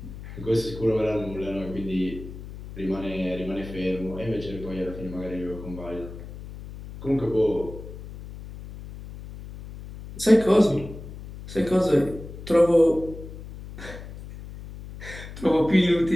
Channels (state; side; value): noise; left; hum, 13 dB below the sound